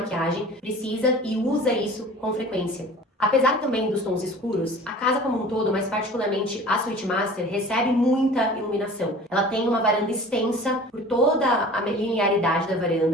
precisa e usa isso com frequência. Apesar também dos tons escuros, a casa como um todo, mas particularmente a Suite Master, recebe muita iluminação. Ela tem uma varanda extensa por toda a linearidade da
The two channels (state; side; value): normal; both; correlation 0.43